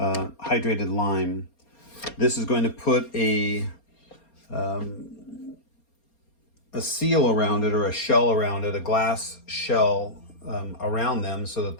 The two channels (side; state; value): right; late; 4.3 ms